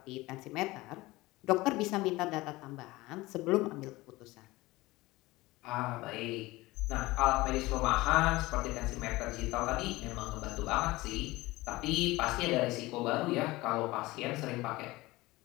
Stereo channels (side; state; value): right; quieter; 20.1 dB